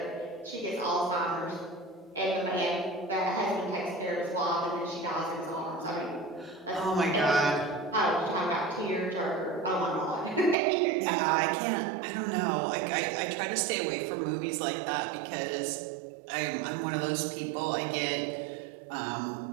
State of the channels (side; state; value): left; drops out; at 10.6 s